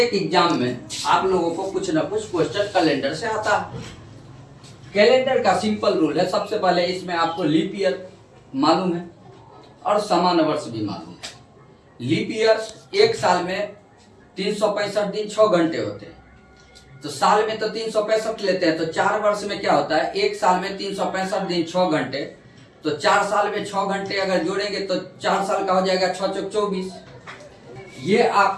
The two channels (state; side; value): identical; both; correlation 1.00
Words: एग्जाम में आप लोगों को कुछ ना कुछ क्वेश्चन कैलेंडर से आता है। कैलेंडर का सिंपल रूल है, सबसे पहले इसमें आपको लीप ईयर मालूम है और सामान्य वर्ष भी मालूम है। लीप ईयर एक साल में 365 दिन 6 घंटे होते हैं, तो साल में तो 365 लेते हैं, तो 4 वर्ष में क्या होता है, एक साल में 365 दिन 6 घंटे, तो 4 साल में 6 घंटे अगर जोड़ेंगे तो 4 साल का हो जाएगा 6 चौक 24। ये